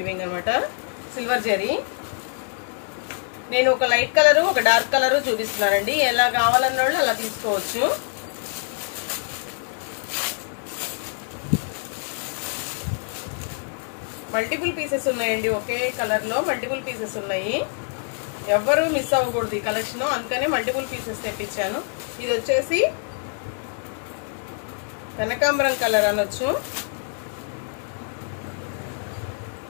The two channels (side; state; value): right; silent; 57 dB below the other